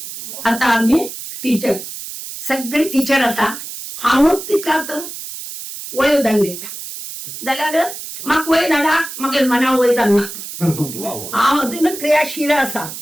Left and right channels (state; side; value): noise; right; hiss, 10 dB below the sound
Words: आता आम्ही टीचर सगळे टीचर आता हांव तितला तर वय धाडले जाल्यार म्हाका वय धाडा म्हागे मना वय जालना. हांव अजून क्रियाशील आसा.